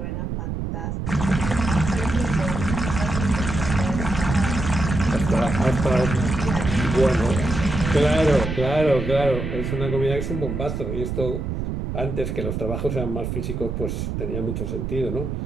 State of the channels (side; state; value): right; noise; rumble, 3 dB below the sound